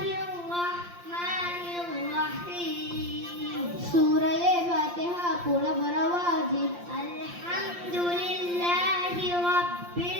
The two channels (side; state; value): left; late; 5.7 ms